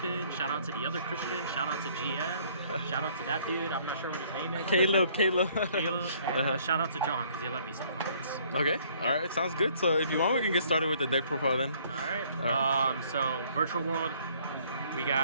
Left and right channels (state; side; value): inverted; both; correlation -0.61